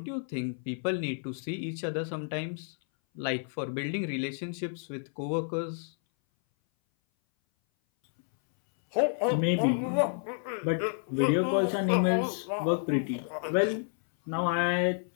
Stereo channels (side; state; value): right; silent; 58 dB below the other